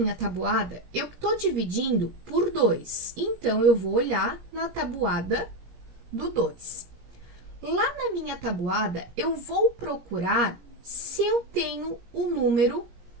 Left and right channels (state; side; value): late; left; 17 ms